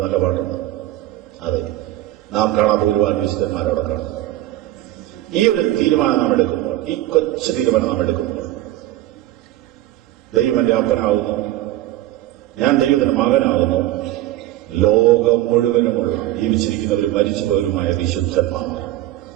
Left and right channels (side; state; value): left; quieter; 15.0 dB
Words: നല്ല പാട്ടുണ്ട്. അതെ, നാം കാണാത്ത ഒരുപാട് വിശുദ്ധന്മാരവിടെ കാണും. ഈ ഒരു തീരുമാനം നാം എടുക്കുമ്പോൾ, ഈ കൊച്ചു തീരുമാനം നാം എടുക്കുമ്പോൾ, ദൈവം എന്റെ അപ്പനാകുന്നു, ഞാൻ ദൈവത്തിന്റെ മകനാകുന്നു, ലോകം മുഴുവനുമുള്ള ജീവിച്ചിരിക്കുന്നവരും മരിച്ചുപോയവരുമായ വിശുദ്ധന്മാർ